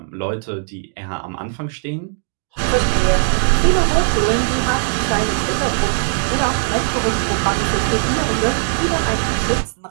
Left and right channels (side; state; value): left; silent; digital silence